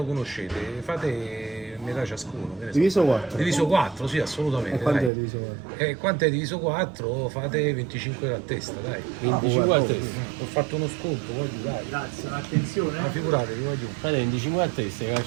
conoscete, fate metà ciascuno. che ne so. Diviso 4. Diviso 4, sì, assolutamente. Quanto dai. è diviso 4? Quanto è diviso 4? Fate 25 a testa, dai. 25 a testa. Ho fatto uno sconto, voglio dai. Grazie, un'attenzione. Ma figuratevi, voglio. Frate, 25 a testa, che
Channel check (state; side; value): drops out; left; at 5.1 s